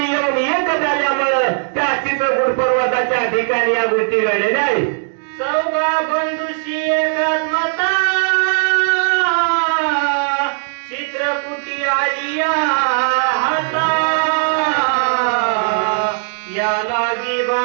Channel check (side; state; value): left; silent; 62 dB below the other